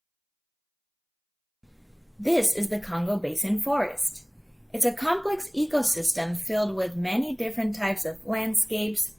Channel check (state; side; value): identical; both; correlation 1.00